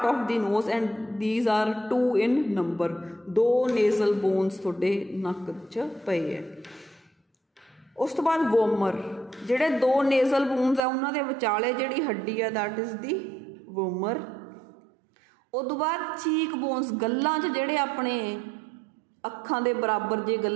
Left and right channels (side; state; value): left; drops out; at 10.8 s